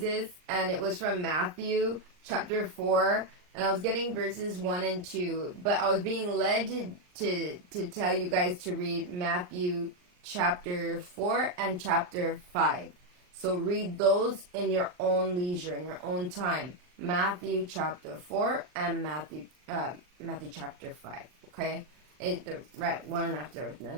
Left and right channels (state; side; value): late; left; 39 ms